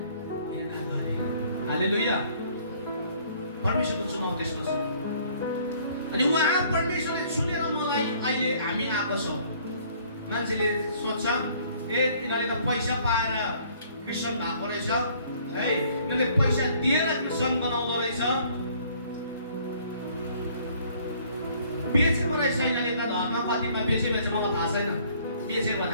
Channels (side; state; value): both; inverted; correlation -0.59